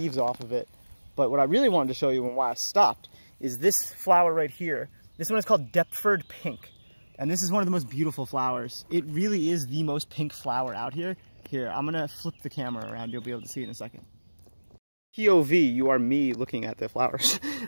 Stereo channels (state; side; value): inverted; both; correlation -1.00